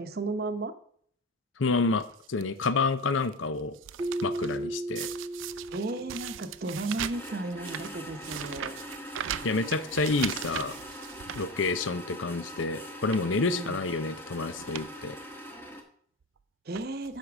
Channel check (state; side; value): normal; both; correlation 0.26